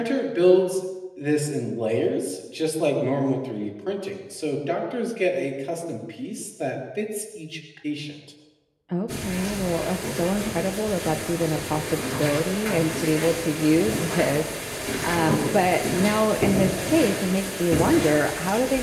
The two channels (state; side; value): identical; both; correlation 1.00